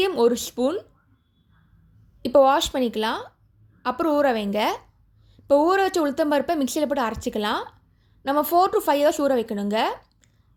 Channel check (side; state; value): both; identical; correlation 1.00